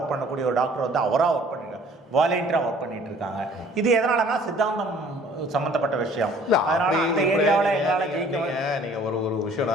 பண்ணக்கூடிய ஒரு டாக்டர் வந்து அவராக ஒர்க் பண்ணிருக்காங்க, வாலண்டியராக ஒர்க் பண்ணிட்டு இருக்காங்க. இது எதனாலனா சித்தாந்தம் சம்மந்தப்பட்ட விஷயம். அதனால அந்த ஏரியாவில் எங்களால் ஜெயிக்க. நீங்கள் ஒரு விஷயம்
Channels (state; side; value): normal; both; correlation 0.54